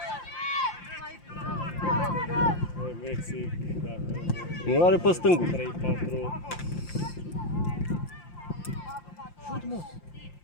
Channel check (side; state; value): right; late; 5.7 ms